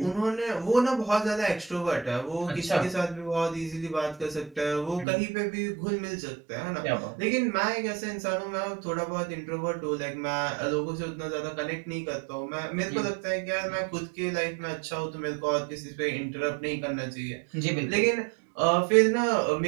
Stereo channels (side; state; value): left; drops out; at 5.1 s